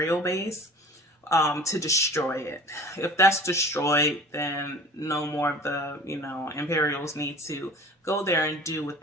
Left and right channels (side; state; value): both; normal; correlation 0.43